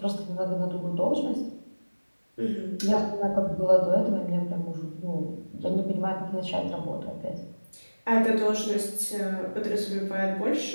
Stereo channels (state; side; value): inverted; both; correlation -1.00